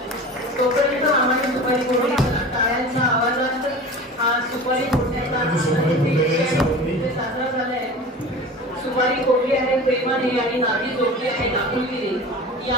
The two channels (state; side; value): normal; both; correlation 0.36